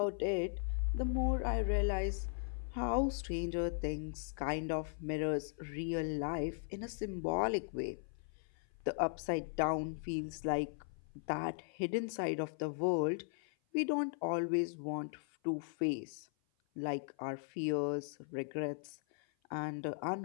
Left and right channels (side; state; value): right; silent; 52 dB below the other